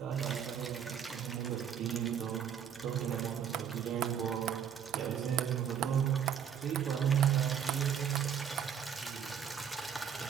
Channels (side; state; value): left; quieter; 8.4 dB